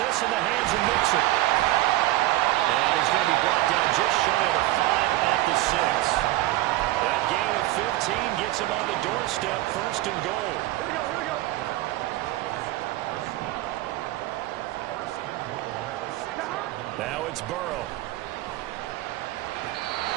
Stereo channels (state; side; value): quieter; left; 16.8 dB